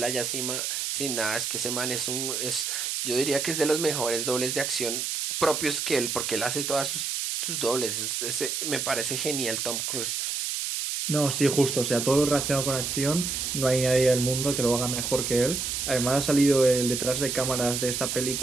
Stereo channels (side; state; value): right; noise; hiss, 2 dB below the sound